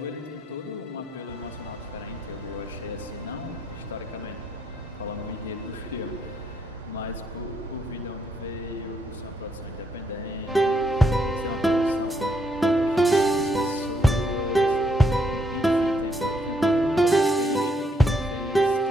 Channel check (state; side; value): normal; both; correlation 0.73